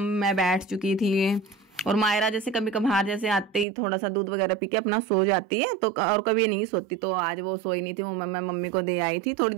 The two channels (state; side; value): drops out; left; at 3.7 s